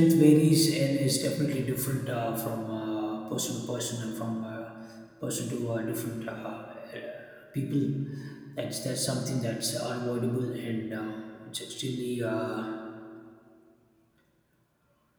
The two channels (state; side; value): identical; both; correlation 1.00